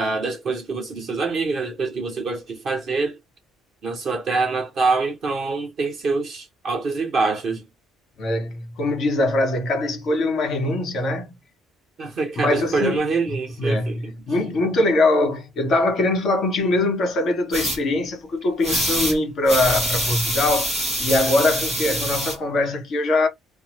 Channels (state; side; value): normal; both; correlation 0.70